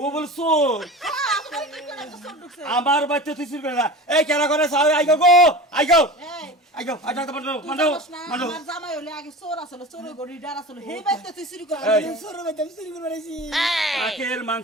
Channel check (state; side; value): normal; both; correlation 0.34